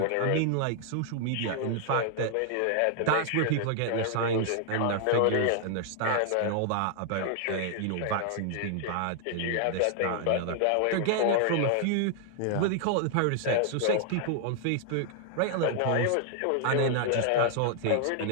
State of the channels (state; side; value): different; both; correlation 0.00